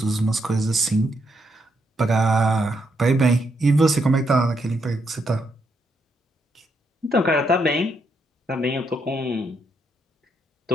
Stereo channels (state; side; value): normal; both; correlation 0.78